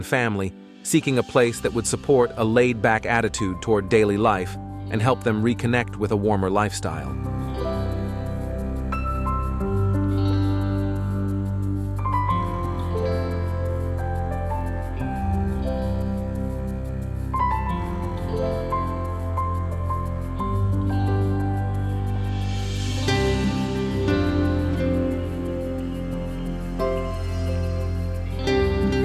family seeking a place that would support a laid-back attitude toward daily life and help them reconnect with a warmer lifestyle.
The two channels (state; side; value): identical; both; correlation 1.00